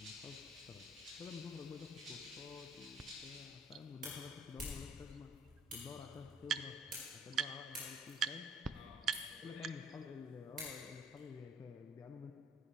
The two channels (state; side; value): normal; both; correlation 0.58